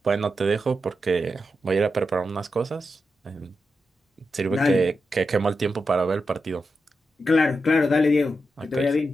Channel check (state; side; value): normal; both; correlation 0.88